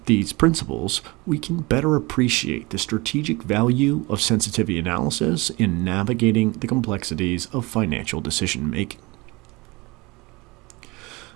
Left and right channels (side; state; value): left; quieter; 24.0 dB